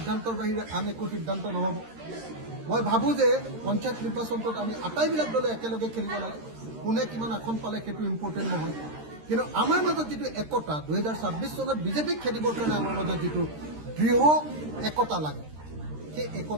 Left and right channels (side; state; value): left; late; 13 ms